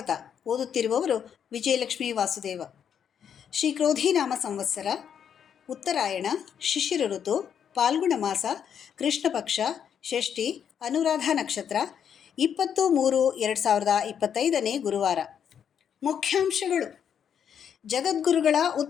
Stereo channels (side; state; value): right; quieter; 8.2 dB